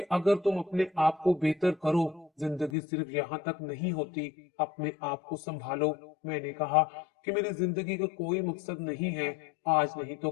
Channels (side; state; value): right; drops out; at 2.7 s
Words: अगर तुम अपने आप को बेहतर करो, जिंदगी सिर्फ यहाँ तक नहीं होती, अपने आप को संभालो। मैंने कहा कि मेरी जिंदगी का कोई मकसद नहीं है, आज नहीं तो